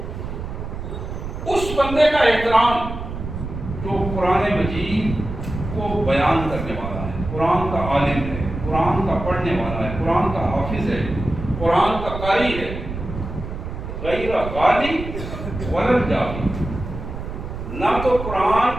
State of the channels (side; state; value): right; noise; rumble, 7 dB below the sound